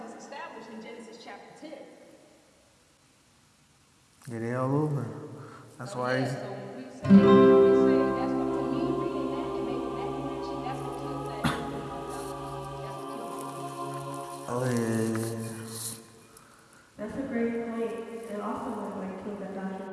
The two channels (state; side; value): identical; both; correlation 1.00